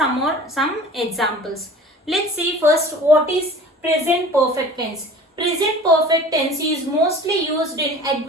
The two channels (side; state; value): both; normal; correlation 0.43